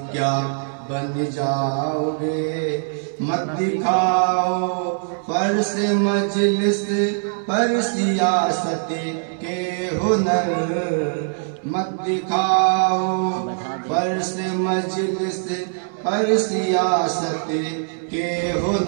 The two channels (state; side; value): silent; left; digital silence